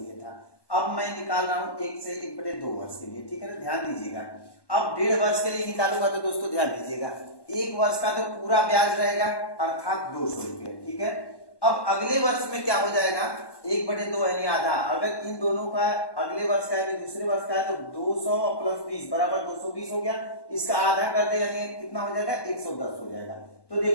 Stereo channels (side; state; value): right; late; 1.1 ms